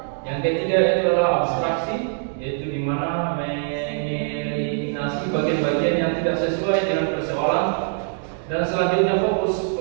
Yang ketiga itu adalah abstraksi, yaitu di mana mengeliminasi bagian-bagian yang tidak sesuai dengan persoalan. Dan selanjutnya fokus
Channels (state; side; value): silent; left; digital silence